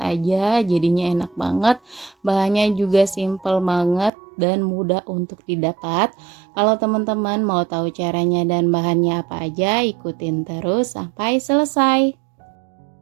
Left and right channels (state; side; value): drops out; left; at 4.1 s